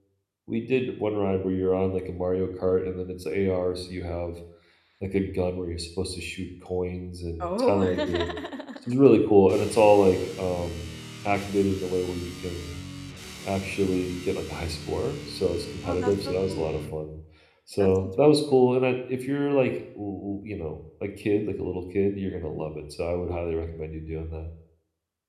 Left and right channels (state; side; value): identical; both; correlation 1.00